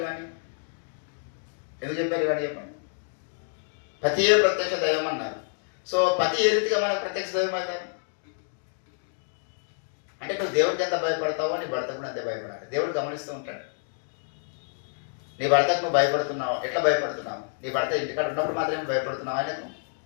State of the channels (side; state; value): right; silent; digital silence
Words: ఇవన్నీ? చెప్పండి. పతియే ప్రత్యక్ష దైవం అన్నారు. సో పతి ఏ రీతిగా మనకు ప్రత్యక్ష దైవం అవుతారు అంటే, నువ్వు దేవుడికి ఎంత భయపడతావో నీ భర్త కూడా అంతే భయపడాలి. దేవుడు గమనిస్తూ ఉంటాడు. నీ భర్తకు నువ్వు భయపడుతున్నావు, ఎట్లా భయపడుతున్నావు? నీ భర్త ఇంటికాడ ఉన్నప్పుడు మాత్రమే భయపడుతున్నావు ఆయనకు.